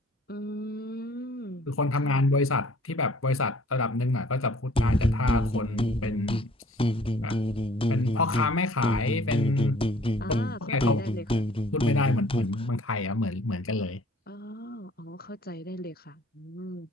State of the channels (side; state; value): both; normal; correlation 0.54